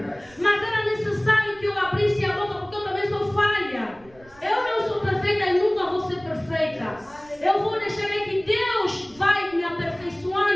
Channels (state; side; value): noise; right; rumble, 26 dB below the sound